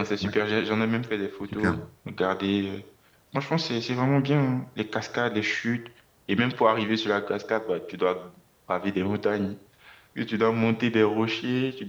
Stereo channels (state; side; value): identical; both; correlation 1.00